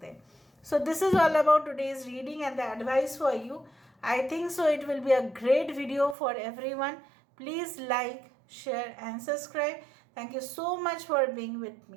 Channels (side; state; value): left; drops out; at 6.2 s